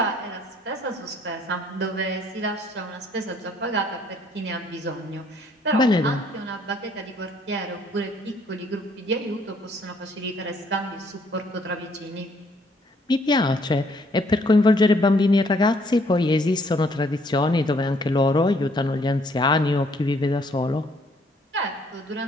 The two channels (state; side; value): normal; both; correlation 0.65